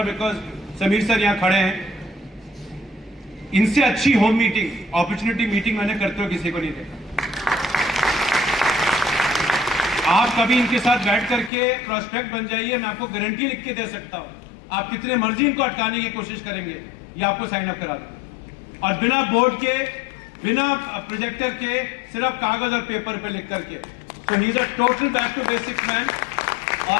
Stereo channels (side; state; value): right; drops out; at 11.5 s